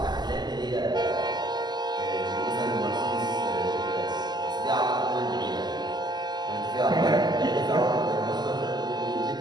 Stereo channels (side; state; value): left; late; 0.21 ms